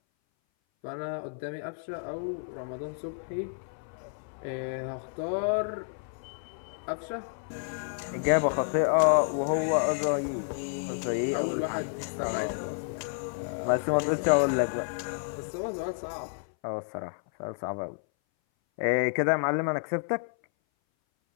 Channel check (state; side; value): silent; right; 58 dB below the other